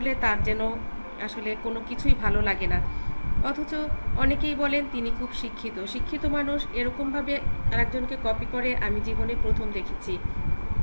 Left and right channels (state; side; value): inverted; both; correlation -1.00